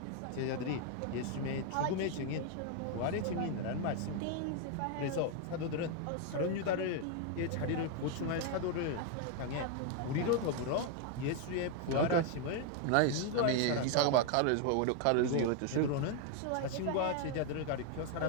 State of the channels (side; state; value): both; different; correlation 0.00